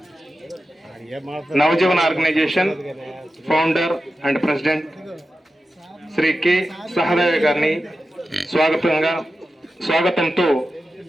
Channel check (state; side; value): normal; both; correlation 0.92